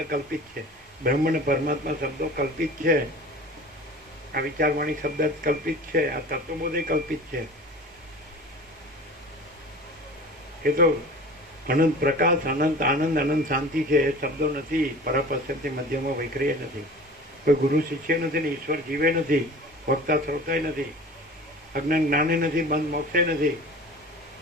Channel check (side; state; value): both; normal; correlation 0.40